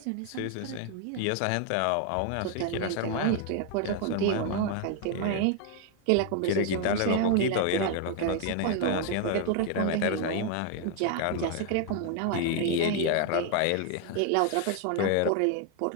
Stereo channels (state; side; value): different; both; correlation 0.00